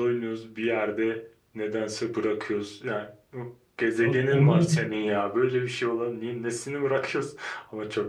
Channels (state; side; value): identical; both; correlation 1.00